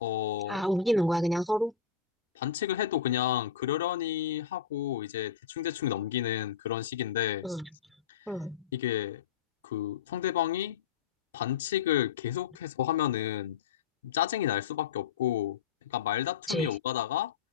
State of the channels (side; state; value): right; quieter; 7.2 dB